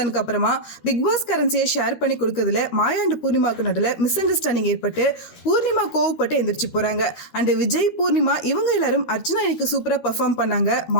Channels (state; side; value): late; right; 13 ms